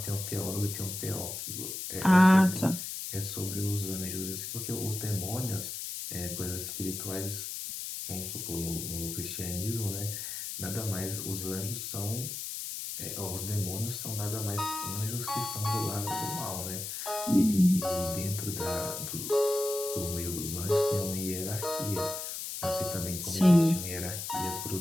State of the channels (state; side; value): noise; left; hiss, 6 dB below the sound